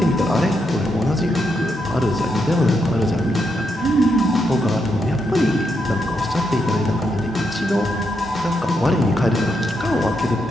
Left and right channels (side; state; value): both; normal; correlation 0.81